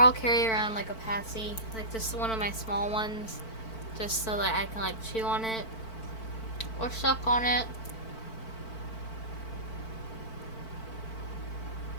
carry around, like, a Passy, like just one of my small ones, just so that I can, like, chew on it or suck on it.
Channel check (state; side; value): late; right; 4.5 ms